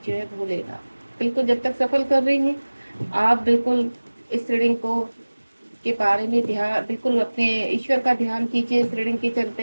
जय भोलेनाथ। बिल्कुल, जब तक सफल कर रही हैं आप, बिल्कुल इस रीडिंग को के बारे में ध्यान, बिल्कुल अपने ईश्वर का ध्यान कीजिए इस रीडिंग के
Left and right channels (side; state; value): both; inverted; correlation -1.00